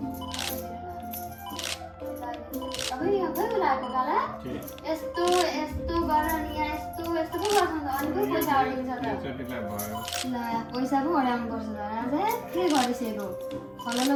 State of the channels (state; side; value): identical; both; correlation 1.00